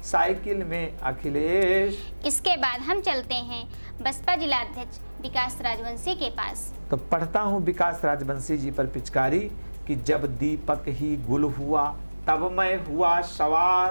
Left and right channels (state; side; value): inverted; both; correlation -1.00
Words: साइकिल में अखिलेश। इसके बाद हम चलते हैं बसपा जिला अध्यक्ष विकास राजवंशी के पास। तो पढ़ता हूँ विकास राजवंशी जी पर पिचकारी कि जब दीपक ही गुल हुआ तब मैं हुआ